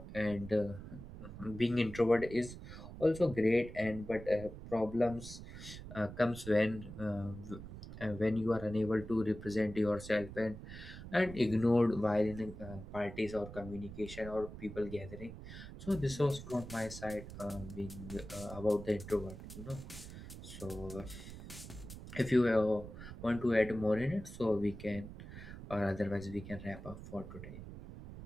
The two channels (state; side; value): noise; right; rumble, 12 dB below the sound